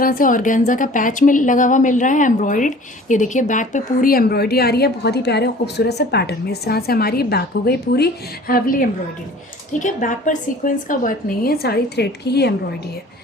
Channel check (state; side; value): normal; both; correlation 0.47